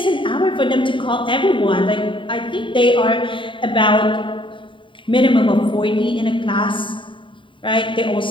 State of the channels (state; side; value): late; right; 0.24 ms